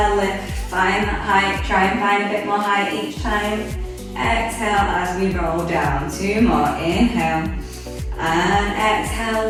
lift. Find that height. Try and find a bit more height each time. Exhale as we roll down. 2 more. Inhale. And exhale,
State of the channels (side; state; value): both; identical; correlation 1.00